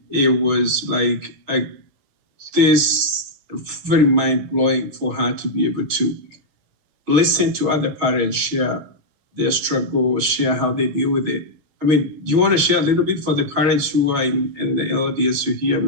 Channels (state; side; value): late; left; 7.5 ms